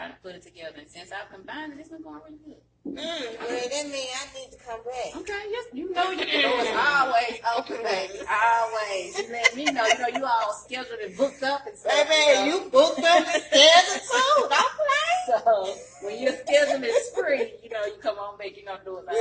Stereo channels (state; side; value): identical; both; correlation 1.00